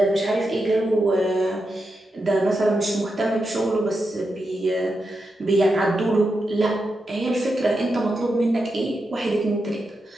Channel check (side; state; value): both; normal; correlation 0.87